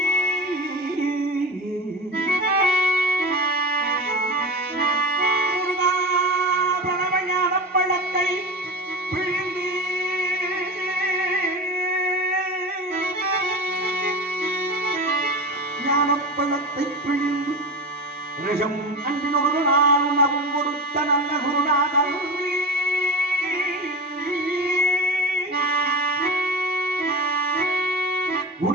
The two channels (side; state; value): both; normal; correlation 0.27